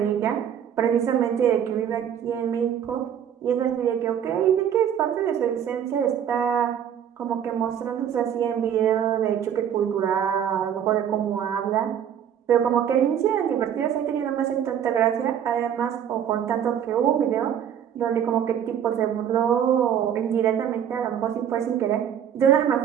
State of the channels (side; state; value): left; quieter; 9.1 dB